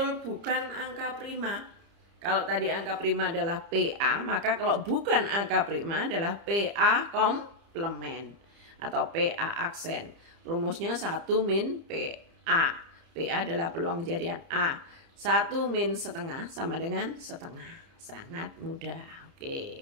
bukan angka prima? Kalau tadi angka prima adalah PA, maka kalau bukan angka prima adalah PA komplement atau PA aksen. Rumusnya 1 min PA. PA adalah peluang kejadian A. 1 min setengah sama dengan setengah. Sangat mudah.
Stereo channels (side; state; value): left; late; 30 ms